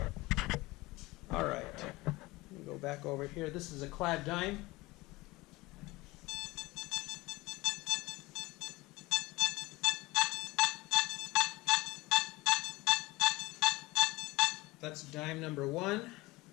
Alright, let me go back over here. This is a clad dime. That's dime number 1.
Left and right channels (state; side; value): quieter; right; 21.2 dB